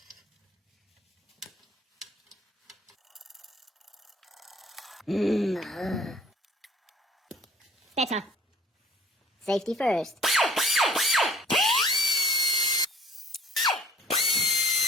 Better. Safety first.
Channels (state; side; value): normal; both; correlation 0.53